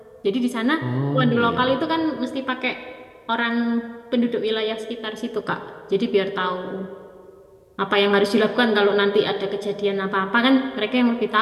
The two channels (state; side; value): identical; both; correlation 1.00